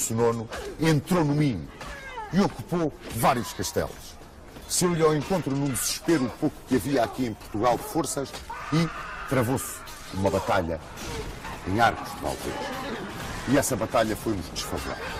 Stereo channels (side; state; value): both; identical; correlation 1.00